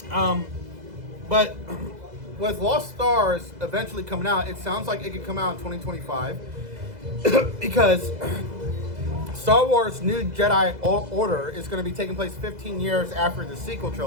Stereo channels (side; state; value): left; late; 2.0 ms